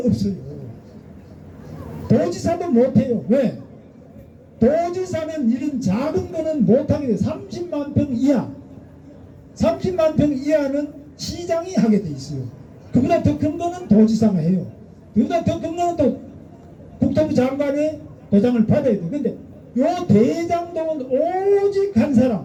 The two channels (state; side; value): identical; both; correlation 1.00